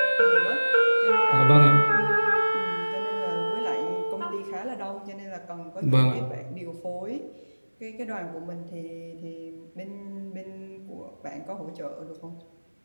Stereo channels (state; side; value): inverted; both; correlation -1.00